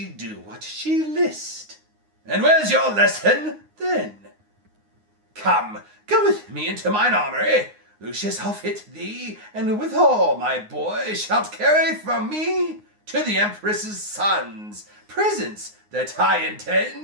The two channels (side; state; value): left; late; 9.6 ms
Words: do what she list. And where's your lesson, then? Come, go with me into mine armory. Lucius, I'll fit thee, and withal, my boy, shalt carry from me to the Empress's sons presents that I